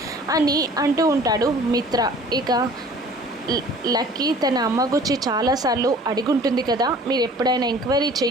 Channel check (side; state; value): both; normal; correlation 0.49